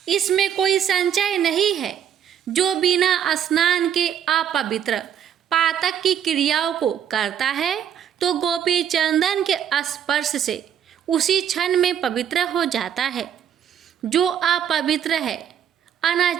इसमें कोई संचय नहीं है। जो बिना स्नान के अपवित्र पातक की क्रियाओं को करता है तो गोपी चंदन के स्पर्श से उसी क्षण में पवित्र हो जाता है। जो अपवित्र है,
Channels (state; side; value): quieter; left; 9.1 dB